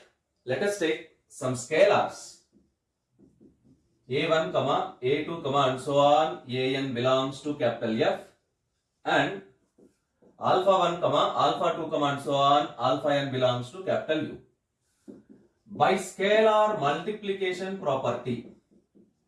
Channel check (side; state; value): both; identical; correlation 1.00